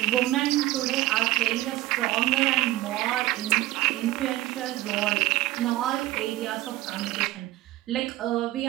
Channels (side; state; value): left; quieter; 16.8 dB